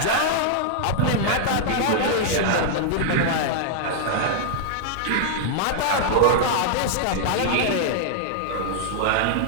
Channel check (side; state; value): both; different; correlation -0.01